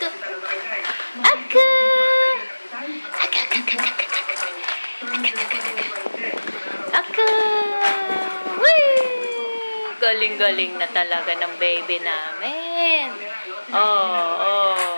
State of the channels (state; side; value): inverted; both; correlation -1.00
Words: Aka! Aka, aka, aka, aka, aka. Wee! Galing-galing na talaga ng baby namin.